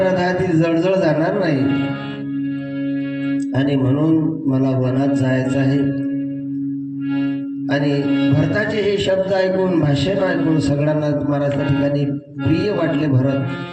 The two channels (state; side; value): identical; both; correlation 1.00